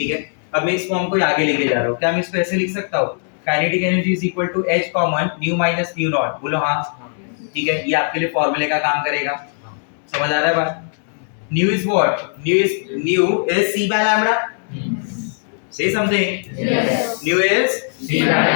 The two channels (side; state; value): right; silent; 62 dB below the other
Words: है। अब मैं इस फॉर्म को आगे लेके जा रहा हूँ। क्या मैं इसको ऐसे लिख सकता हूँ? Kinetic energy is equal to h common nu minus nu naught. बोलो हाँ। ठीक है, ये आपके लिए फॉर्मूले का काम करेगा। समझ आ रहा है बात? New is what? New is c by lambda। Say something. Yes. New is c by